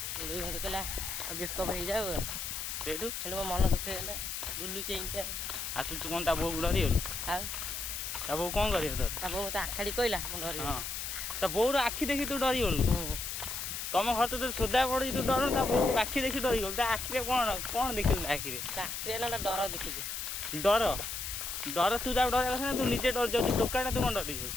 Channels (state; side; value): noise; left; hiss, 5 dB below the sound